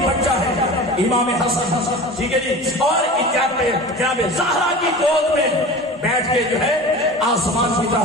بچہ ہے امام حسن، ٹھیک ہے جی، اور جناب زہرا کی گود میں بیٹھ کے جو ہے آسمان کی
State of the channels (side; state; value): both; normal; correlation 0.35